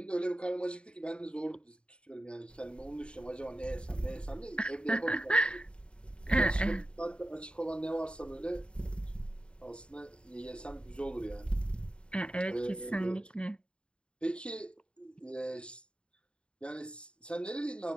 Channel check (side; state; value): right; late; 0.054 ms